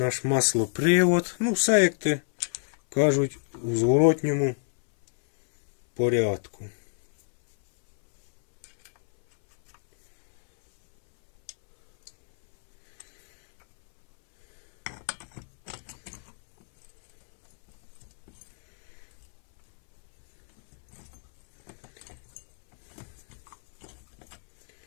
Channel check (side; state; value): right; silent; 60 dB below the other